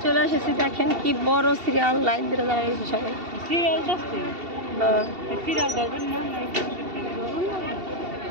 চলে এসেছি দেখেন কি বড় সিরিয়াল লাইন ধরে দাঁড়িয়েছে সবাই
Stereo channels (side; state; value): left; late; 2.7 ms